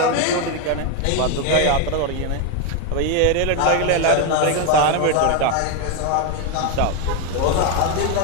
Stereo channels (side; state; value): both; different; correlation 0.01